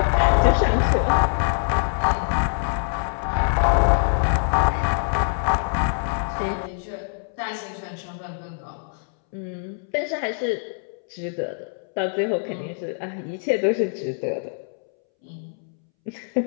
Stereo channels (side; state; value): right; silent; 63 dB below the other